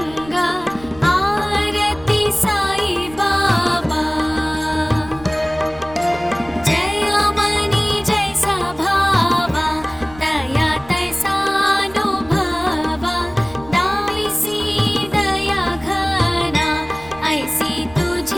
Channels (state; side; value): noise; right; rumble, 20 dB below the sound